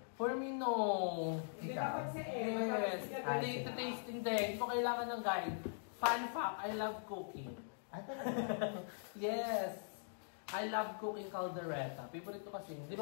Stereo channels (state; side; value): silent; right; digital silence